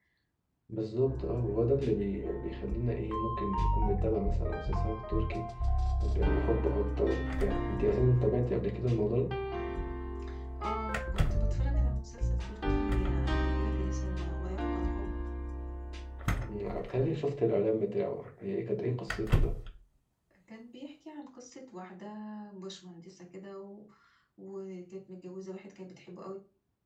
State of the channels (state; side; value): identical; both; correlation 1.00